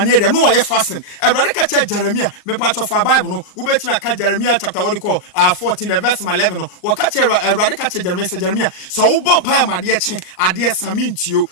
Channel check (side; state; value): right; late; 38 ms